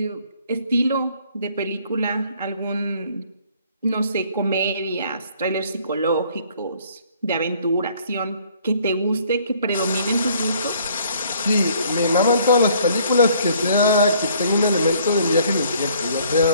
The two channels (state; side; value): inverted; both; correlation -0.60